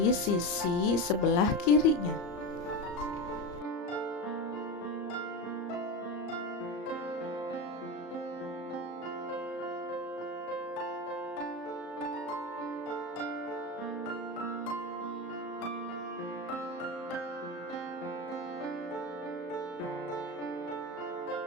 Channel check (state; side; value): late; right; 34 ms